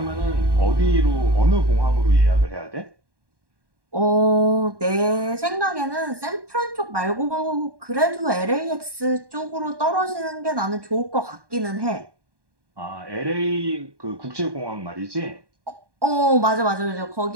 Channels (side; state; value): left; late; 1.1 ms